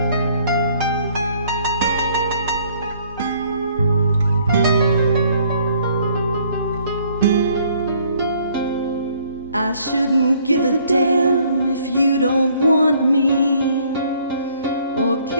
I shouldn't give a damn if you don't want me or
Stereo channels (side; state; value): both; inverted; correlation -0.62